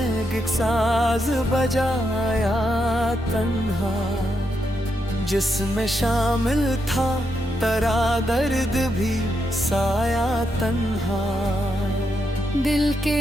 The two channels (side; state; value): both; normal; correlation 0.82